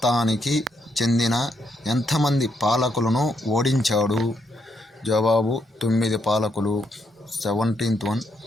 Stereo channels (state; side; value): normal; both; correlation 0.76